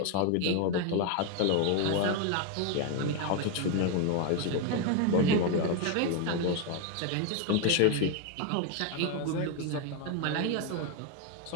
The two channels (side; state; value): both; different; correlation 0.01